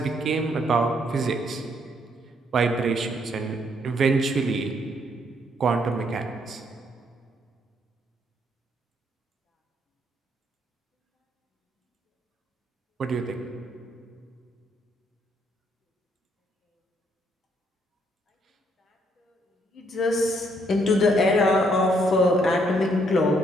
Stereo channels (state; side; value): normal; both; correlation 0.71